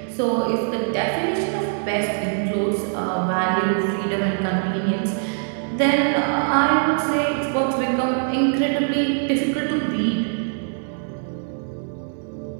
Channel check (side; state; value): left; silent; digital silence